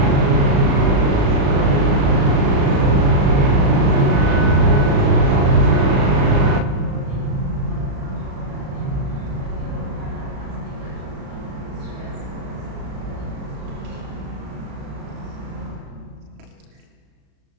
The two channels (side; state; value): left; late; 36 ms